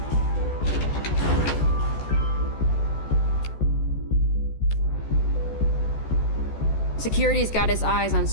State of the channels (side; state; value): right; late; 14 ms